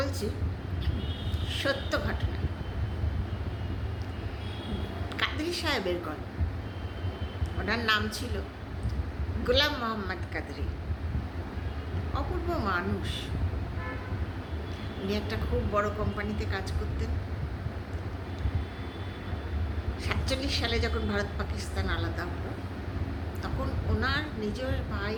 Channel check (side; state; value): both; identical; correlation 1.00